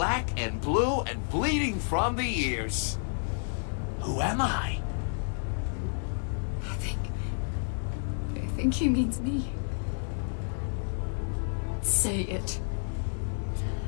and blue and bleeding from the ears. Who am I? I think he means me. Say it.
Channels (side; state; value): right; silent; digital silence